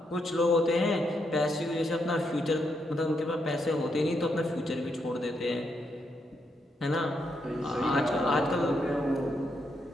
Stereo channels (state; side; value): normal; both; correlation 0.79